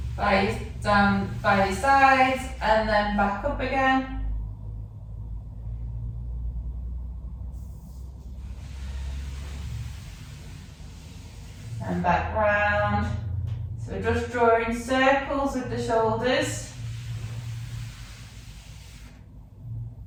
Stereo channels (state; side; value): identical; both; correlation 1.00